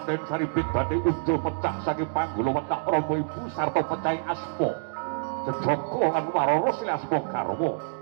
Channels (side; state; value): left; silent; digital silence